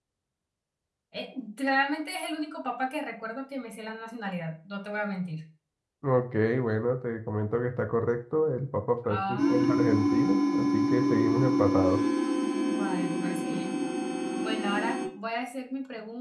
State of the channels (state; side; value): identical; both; correlation 1.00